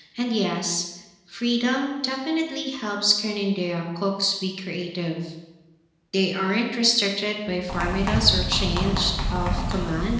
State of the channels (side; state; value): both; identical; correlation 1.00